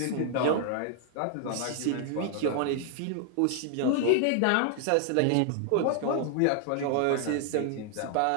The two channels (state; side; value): different; both; correlation 0.00